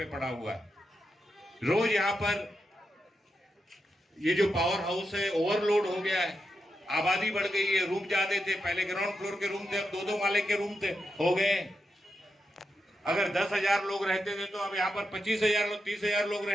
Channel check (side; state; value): both; normal; correlation 0.87